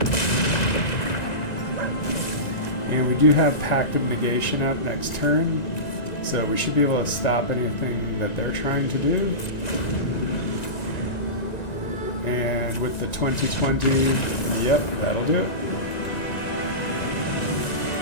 And we do have Pact of Negation up next turn, so we should be able to stop anything that they're trying to do. And with the 2020, yep, that'll do it.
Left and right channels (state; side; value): late; right; 1.9 ms